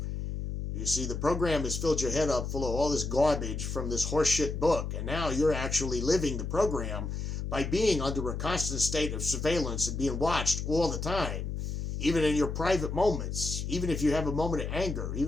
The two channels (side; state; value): left; noise; hum, 4 dB below the sound